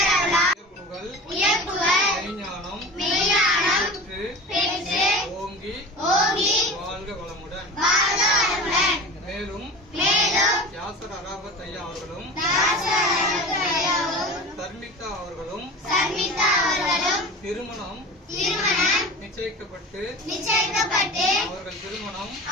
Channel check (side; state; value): both; normal; correlation 0.34